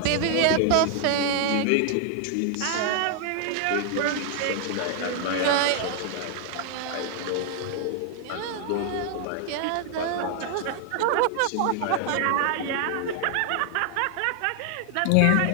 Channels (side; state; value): both; different; correlation 0.00